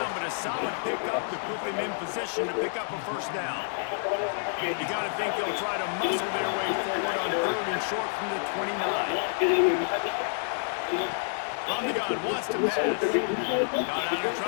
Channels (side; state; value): right; silent; 59 dB below the other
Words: but a solid pickup to put them in position to pick up a first down. You got to think they'll try to muscle their way forward on third and short from the 29. From the gun, wants to pass. Got out of